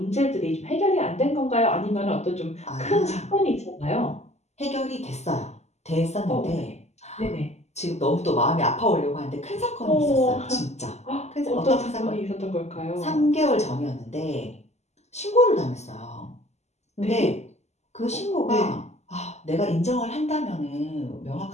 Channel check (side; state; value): right; late; 0.32 ms